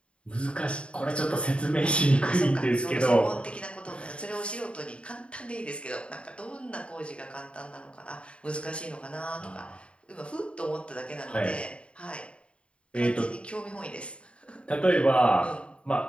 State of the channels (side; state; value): right; late; 0.058 ms